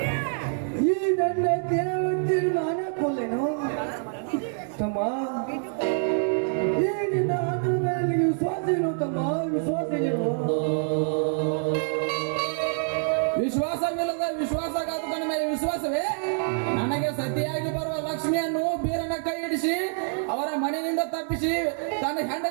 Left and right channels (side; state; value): left; silent; digital silence